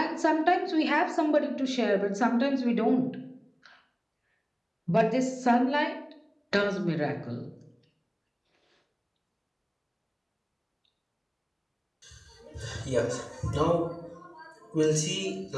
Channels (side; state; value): both; identical; correlation 1.00